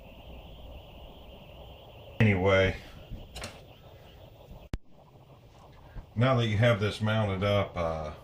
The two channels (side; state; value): both; identical; correlation 1.00